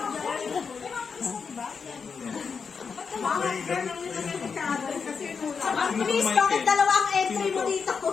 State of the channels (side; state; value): right; quieter; 5.7 dB